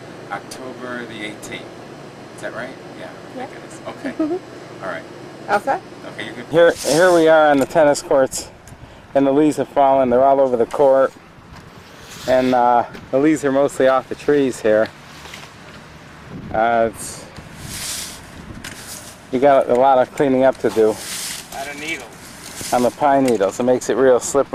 October the 18th. Is that right? Yeah, I think it is. Okay. All right. Outside? Okay, you can. Here we are on the tennis courts, and the leaves have fallen. They're all over the court, and the leaves are mostly off the trees here. You got a lot of cleaning up to do. Out of needles. On the pine needles. It makes it real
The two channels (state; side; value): identical; both; correlation 1.00